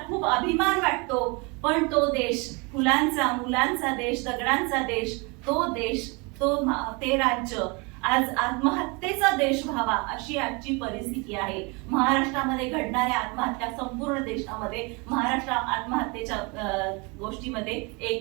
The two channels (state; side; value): quieter; left; 29.3 dB